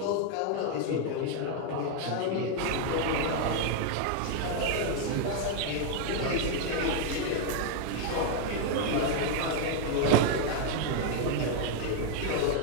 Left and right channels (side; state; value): both; different; correlation 0.00